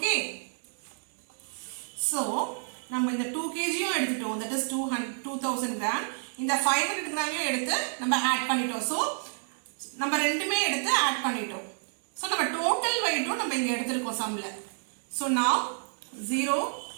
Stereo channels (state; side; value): silent; left; 58 dB below the other